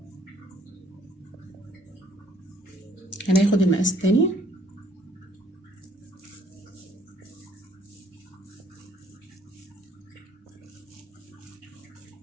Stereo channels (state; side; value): normal; both; correlation 0.63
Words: هناخد المقاس التاني.